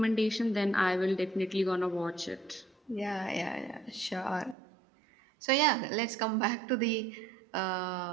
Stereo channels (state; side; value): drops out; left; at 4.5 s